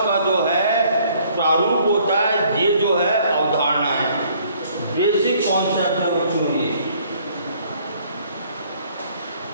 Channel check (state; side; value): inverted; both; correlation -0.61